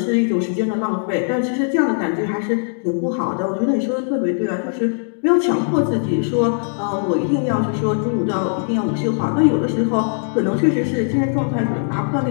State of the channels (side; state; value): right; silent; digital silence